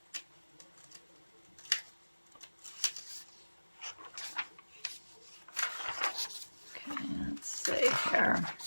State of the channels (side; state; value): both; inverted; correlation -1.00